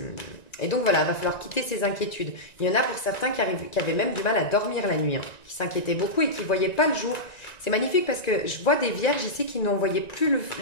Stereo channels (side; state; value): right; late; 1.9 ms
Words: donc voilà, il va falloir quitter ces inquiétudes. Il y en a pour certains qui avaient même du mal à dormir la nuit, hein, qui s'inquiétaient beaucoup et qui ne voyaient pas le jour. C'est magnifique parce que je vois des vierges ici qui n'en voyaient plus